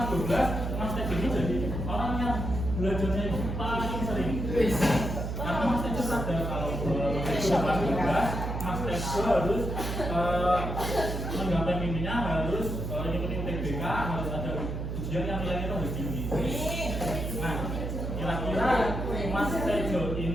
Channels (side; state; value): right; noise; hum, 3 dB below the sound